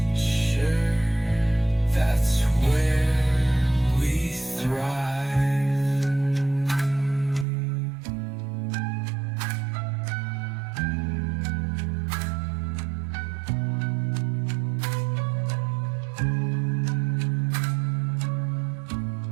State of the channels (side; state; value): left; drops out; at 7.5 s